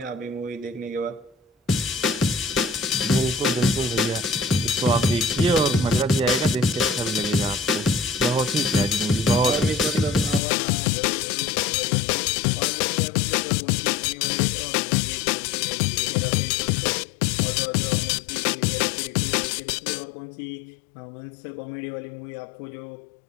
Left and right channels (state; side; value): drops out; right; at 10.4 s